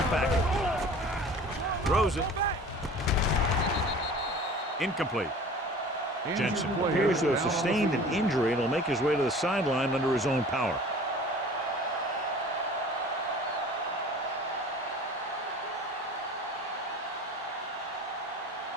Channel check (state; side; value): normal; both; correlation 0.43